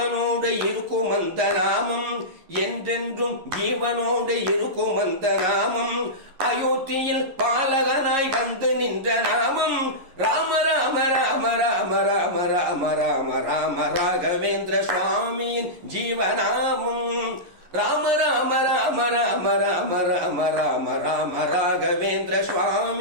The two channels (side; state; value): left; late; 11 ms